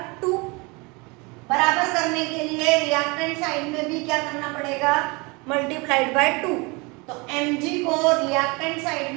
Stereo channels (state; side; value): quieter; left; 27.6 dB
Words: 2। बराबर करने के लिए रिएक्टेंट साइड में भी क्या करना पड़ेगा? Multiplied by 2। तो Mg को रिएक्टेंट साइड